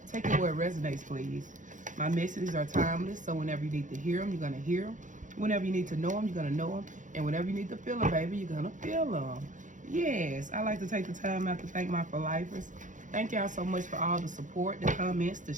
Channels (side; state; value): left; late; 0.37 ms